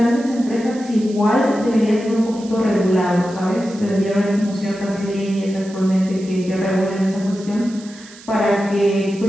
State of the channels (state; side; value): noise; right; hiss, 20 dB below the sound